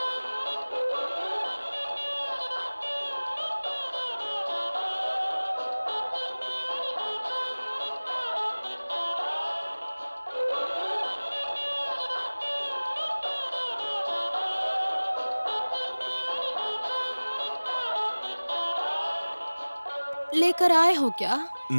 लेकर आए हो क्या?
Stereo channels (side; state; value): both; inverted; correlation -1.00